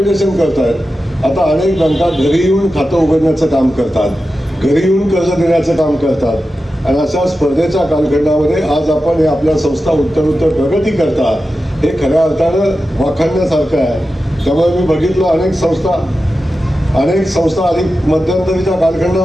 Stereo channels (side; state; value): both; normal; correlation 0.92